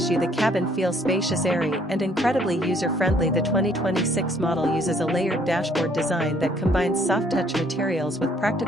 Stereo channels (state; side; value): normal; both; correlation 0.63